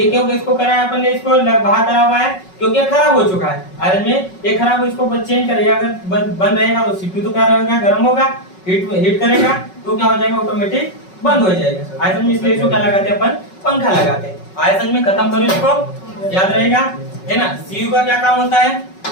क्यों इसको करा है अपन ने, इसको बाहर करा हुआ है क्योंकि खराब हो चुका है। आयतन में ये खराब हो, इसको चेंज करेगा, अगर बंद रहेगा तो सीपीयू तो क्या रहेगा, गर्म होगा, हीट करेगा तो क्या हो जाएगा, ऑटोमेटिक बंद हो जाएगा। आयतन में इसलिए इसको क्या लगाते हैं अपन, पंखा लगाते हैं। आयतन में खत्म करो, इसको याद रहेगा है ना। सीयू का क्या काम होता है,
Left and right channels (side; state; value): right; late; 5.4 ms